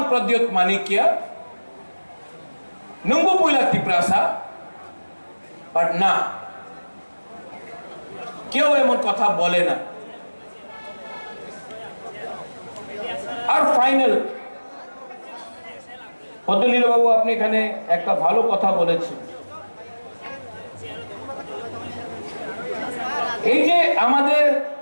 প্রদ্যোত মানিক্য নুঙ্গু পুইলা त्रिपुरा सा, বাট না, কেউ এমন কথা বলে না। আর ফাইনাল, পদ্মলীলা বাবু আপনি এখানে একটা ভালো কথা বলেছেন। এই যে আমাদের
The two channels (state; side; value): inverted; both; correlation -1.00